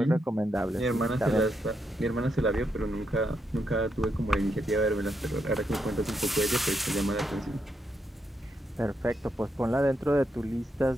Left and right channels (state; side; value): normal; both; correlation 0.81